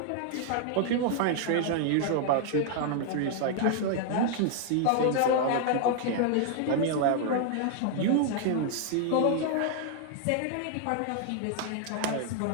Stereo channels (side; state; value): both; different; correlation 0.00